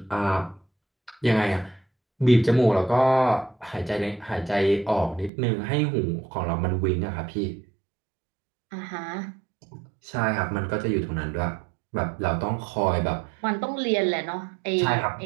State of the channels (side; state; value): left; drops out; at 5.3 s